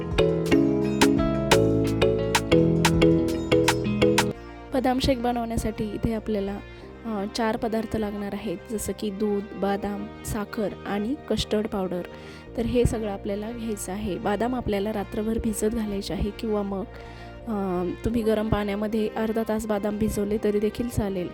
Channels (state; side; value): identical; both; correlation 1.00